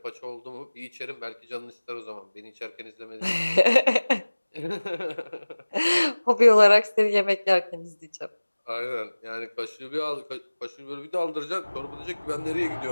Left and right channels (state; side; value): inverted; both; correlation -1.00